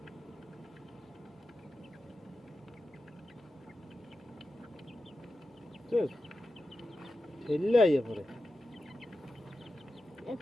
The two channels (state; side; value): normal; both; correlation 0.91